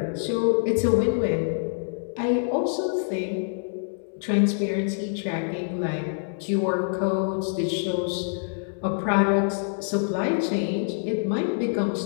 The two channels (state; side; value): silent; right; 61 dB below the other